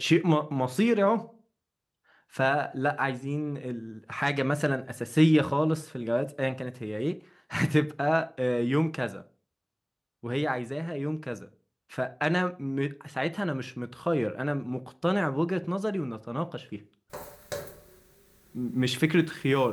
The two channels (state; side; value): identical; both; correlation 1.00